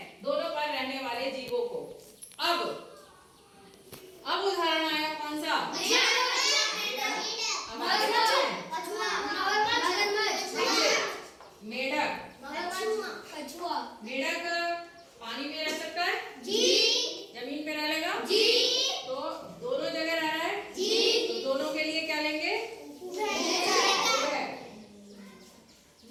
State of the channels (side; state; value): both; identical; correlation 1.00